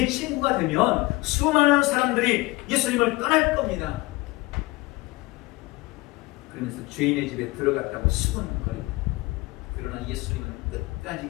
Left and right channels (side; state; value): right; quieter; 21.5 dB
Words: 친구가 되면 수많은 사람들이 예수님을 떠날 겁니다. 그러면서 죄인의 집에 들어갔다고 수근거립니다. 그러나 예수님은 끝까지